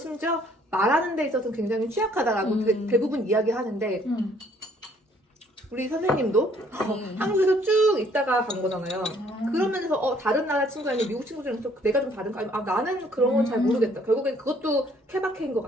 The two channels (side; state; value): both; normal; correlation 0.62